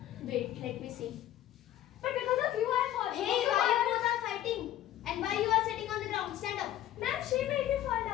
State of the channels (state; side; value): quieter; right; 12.8 dB